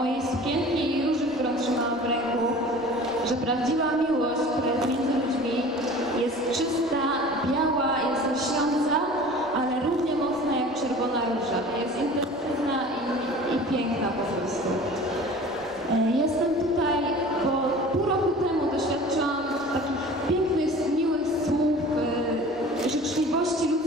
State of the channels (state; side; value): normal; both; correlation 0.42